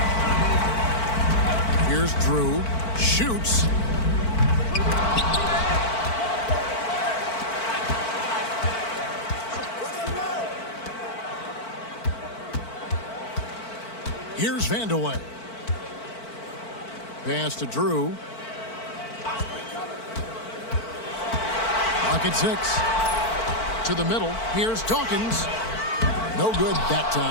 Here's Drew. Shoots. Here's Vandeweghe. Pass to Drew. Pocket 6. To the middle. Here's Dawkins. No good that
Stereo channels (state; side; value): late; right; 4.5 ms